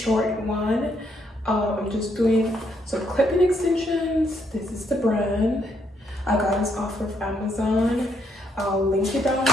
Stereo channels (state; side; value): normal; both; correlation 0.74